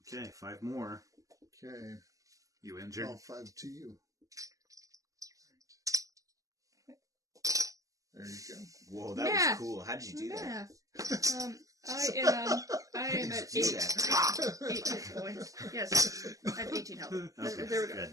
Okay, 5 more. Okay, You injured? all 5 to you. There you go. Whoa, that Math. was cool. How did you do that? Math. I am at Do 8. that. 8 hit points. Yes. I have 18 health. Okay, There we go.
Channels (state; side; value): late; left; 0.16 ms